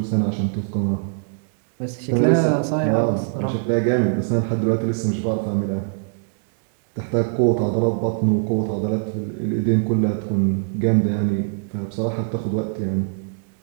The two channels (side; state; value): left; silent; digital silence